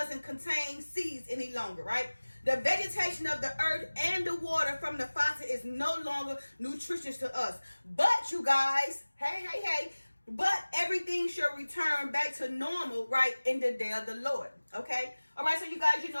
contain seeds any longer, right? The vegetation of the earth and the water from the faucet is no longer nutritious to us. But you guys, hey, but everything shall return back to normal, right, in the day of the Lord. Okay? All right, so you guys,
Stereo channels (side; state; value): both; inverted; correlation -1.00